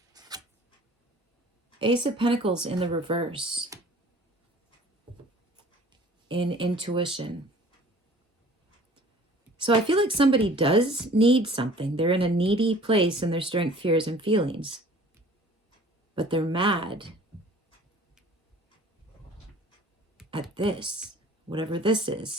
Ace of Pentacles in the reverse. In intuition. So I feel like somebody does need something. They're in a needy place in their strength, fears, and feelings. But they're mad at this, whatever this is,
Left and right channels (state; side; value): normal; both; correlation 0.49